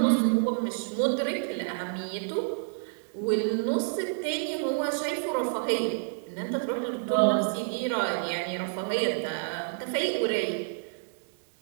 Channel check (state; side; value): silent; left; digital silence